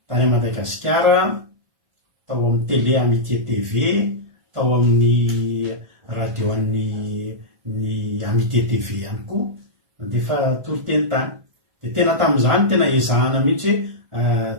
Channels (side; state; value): left; late; 1.5 ms